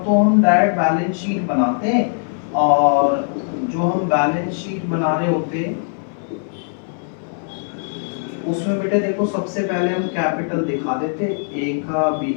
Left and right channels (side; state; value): right; silent; 62 dB below the other